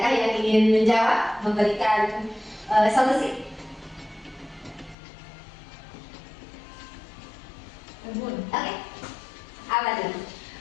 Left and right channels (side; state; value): right; drops out; at 5.0 s